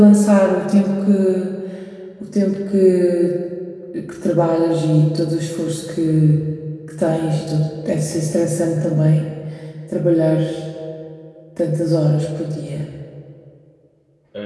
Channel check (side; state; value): both; identical; correlation 1.00